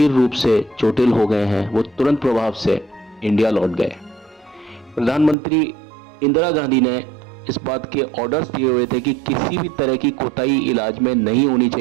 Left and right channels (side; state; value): left; drops out; at 5.4 s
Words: रूप से चोटिल हो गए हैं, वो तुरंत प्रभाव से इंडिया लौट गए। प्रधानमंत्री इंदिरा गांधी ने इस बात के ऑर्डर्स दिए हुए थे कि किसी भी तरह की कोताही इलाज में नहीं होनी